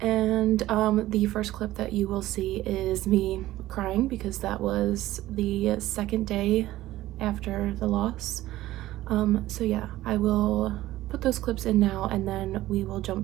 And the first clip that you will see is me crying because that was the second day after the loss. So yeah, I will put those clips in now and then we will jump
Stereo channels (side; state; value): left; quieter; 15.6 dB